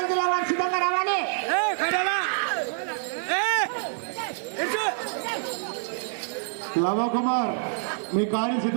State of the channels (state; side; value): silent; left; digital silence